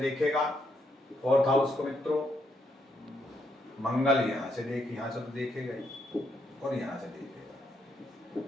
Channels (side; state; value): both; normal; correlation 0.76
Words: 4th हाउस को मित्रों? मंगल यहां से तो देखेगा ही, और यहां से देखेगा।